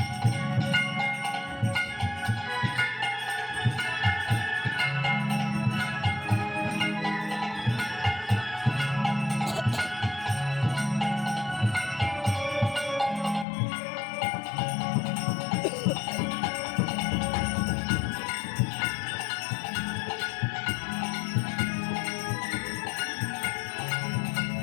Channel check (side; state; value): right; drops out; at 13.5 s